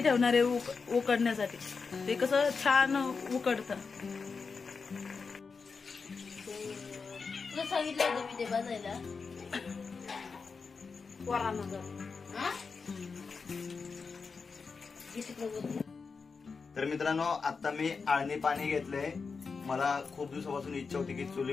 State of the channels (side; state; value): right; quieter; 4.9 dB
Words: ठेवणार आहे उकडण्यासाठी। ते कसं छान उकडतं। तुला सांगितलं होतं मी ते बजायला तर मित्रांनो, आता मी आळणी पाणी घेतलंय। मला खूप दिवसापासून इच्छा होती की